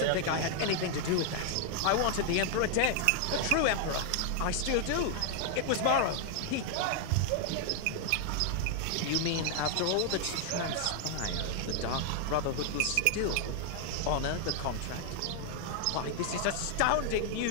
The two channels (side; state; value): both; different; correlation 0.00